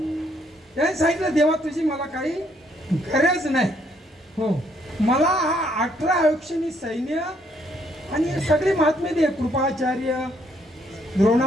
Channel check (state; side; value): normal; both; correlation 0.70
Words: त्याने सांगितलं देवा तुझी मला काही गरज नाही. हो मला हा 18 अक्षनी सैन्य आणि सगळे महात्मे दे. कृपाचार्य